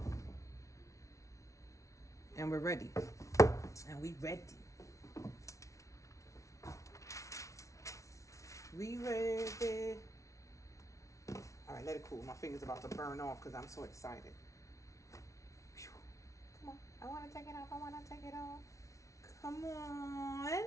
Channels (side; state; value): right; late; 0.15 ms